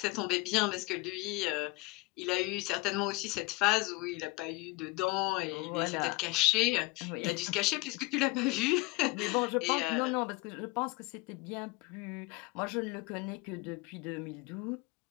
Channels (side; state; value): right; quieter; 23.1 dB